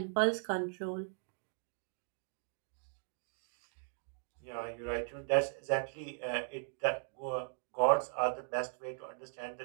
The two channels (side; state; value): left; silent; digital silence